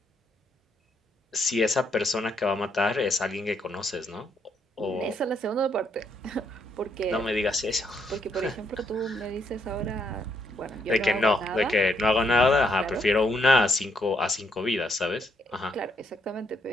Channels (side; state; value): both; normal; correlation 0.74